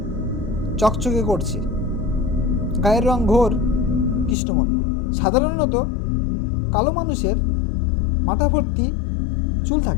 চকচকে করছে, গায়ের রং ঘোর কৃষ্ণবর্ণ। সাধারণত কালো মানুষের মাথা ভর্তি চুল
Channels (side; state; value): right; drops out; at 4.4 s